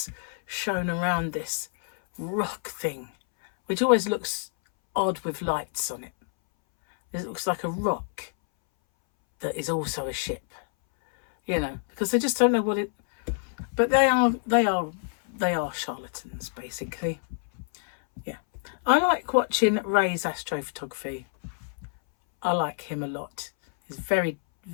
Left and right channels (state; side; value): silent; right; 60 dB below the other